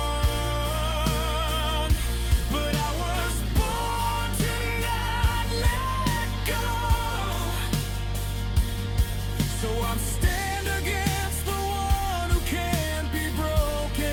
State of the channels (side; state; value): both; identical; correlation 1.00